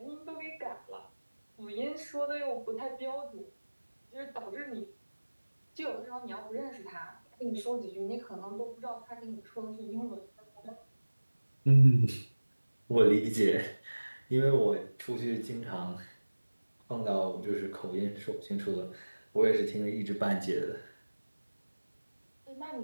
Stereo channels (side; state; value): both; inverted; correlation -1.00